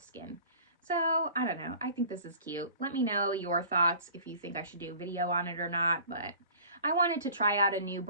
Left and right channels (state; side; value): inverted; both; correlation -0.45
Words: So I don't know. I think this is cute. Let me know your thoughts if you think I should do a video on it or not, but I wanted to try out a new